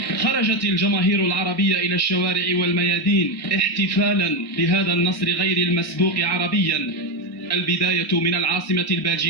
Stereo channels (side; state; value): both; normal; correlation 0.10